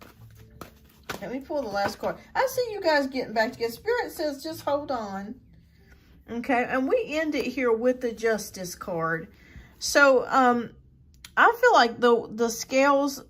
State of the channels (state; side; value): identical; both; correlation 1.00